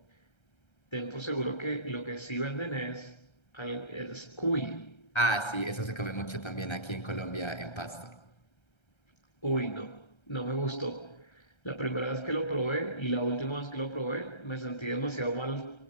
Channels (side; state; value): right; late; 1.3 ms